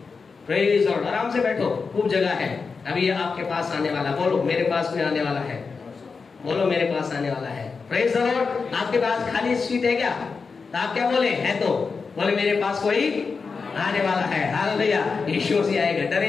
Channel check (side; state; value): right; quieter; 4.9 dB